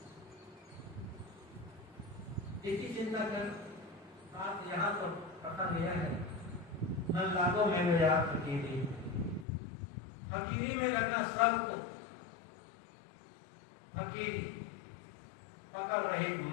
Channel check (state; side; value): drops out; right; at 9.5 s